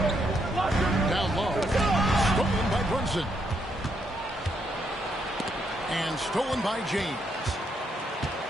Down low. Stolen by Brunson. And stolen by James.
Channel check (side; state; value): both; normal; correlation 0.76